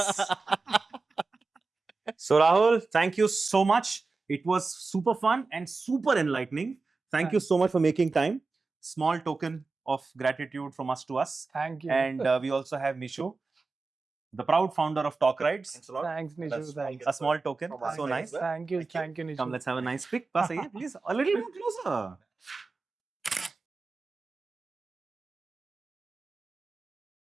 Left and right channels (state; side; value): quieter; left; 4.0 dB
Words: So Rahul, thank you so much. It was super fun and super enlightening. Thank you so much for making time. Small token of gratitude from us to us. Thank you. And we also have Mishu, the proud founder of Talk Rides. Thanks, Nishu. Thanks. A small token. So nice. Thank you. Thank you, Nishu. Come, let's have a nice pic. Pass, please. A little more closer.